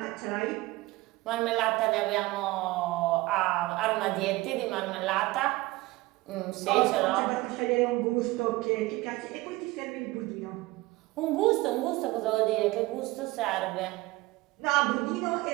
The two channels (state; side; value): quieter; left; 20.3 dB